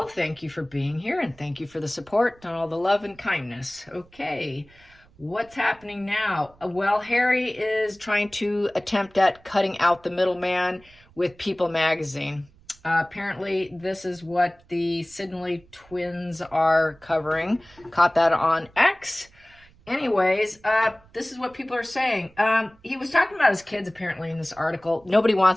Thank you for being here and thank you for the support and all the love and kindness. Okay, what's happening now? Well, Harry is trying to attempt at cutting out the middleman with People magazine. Apparently, this is what the Sidney twins are covering. Caught that on X. Anyways, this is what people are saying. He was talking about his kids apparently in this article. Nobody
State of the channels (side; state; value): right; noise; rumble, 28 dB below the sound